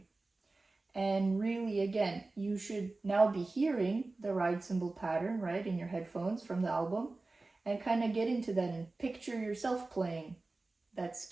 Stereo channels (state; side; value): quieter; left; 3.3 dB